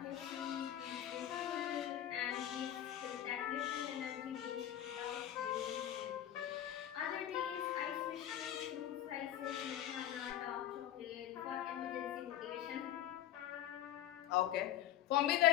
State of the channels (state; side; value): quieter; right; 11.8 dB